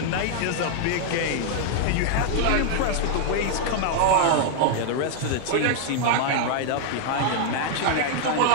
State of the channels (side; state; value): both; different; correlation 0.00